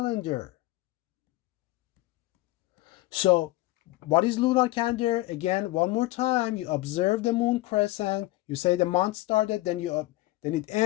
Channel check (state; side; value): quieter; right; 18.3 dB